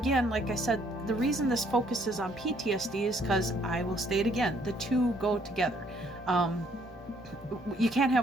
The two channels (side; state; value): both; normal; correlation 0.66